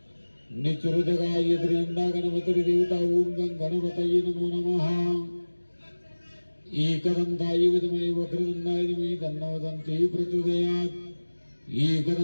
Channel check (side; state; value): both; inverted; correlation -1.00